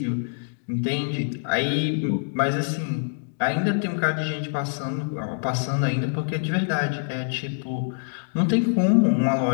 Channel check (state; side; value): silent; right; digital silence